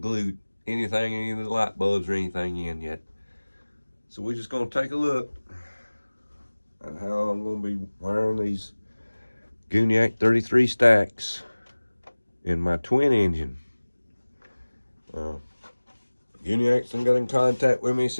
glued anything, any of the light bulbs or anything in yet. So we're just going to take a look at how I'm going to be wiring these Gooniac 33 stacks in my twin engine. Gooniac's got in contact with me,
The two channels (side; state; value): both; inverted; correlation -1.00